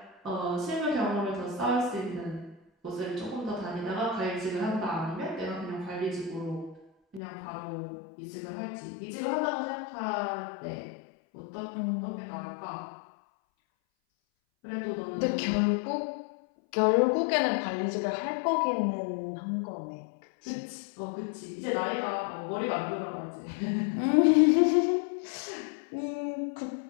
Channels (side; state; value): right; drops out; at 7.2 s